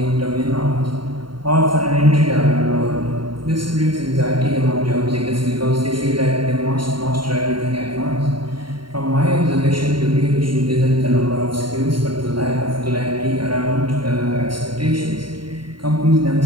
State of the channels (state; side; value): late; left; 0.73 ms